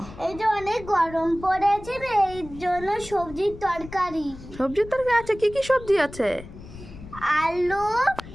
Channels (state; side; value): noise; left; rumble, 16 dB below the sound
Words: এই যে অনেক গরম পড়েছে রে, এই জন্য সবজির তরকারি। সবজির তরকারি আছে? কি কি সবজি আছে? আলু,